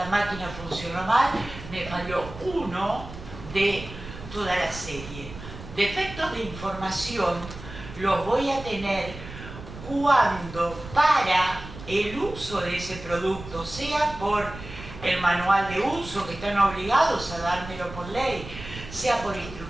máquina funcionó mal, me falló uno de toda la serie. Defectos de información los voy a tener cuando para el uso de ese producto, sea por el manual de uso, que están obligados a dármelo por ley, sea por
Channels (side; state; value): right; noise; rumble, 13 dB below the sound